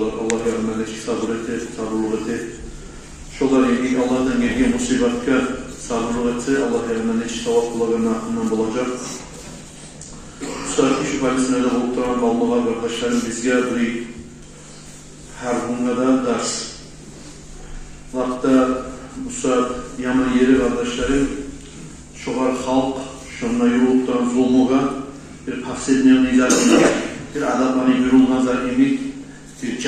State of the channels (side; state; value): both; identical; correlation 1.00